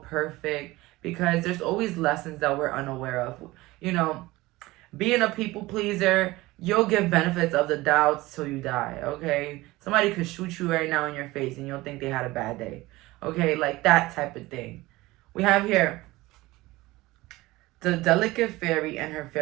perfect because there's always lessons that we're unaware of. You know, being a people pleaser, you'll give benefits of the doubt till you die, okay? Somebody could shoot you right now in your face and you'll think they had a bad day, okay? Like that type of thing. We have here the delicate fairy and her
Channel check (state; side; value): quieter; left; 19.6 dB